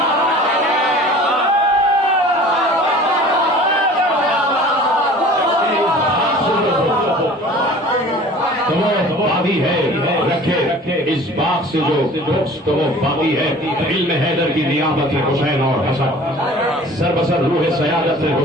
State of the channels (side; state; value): both; normal; correlation 0.45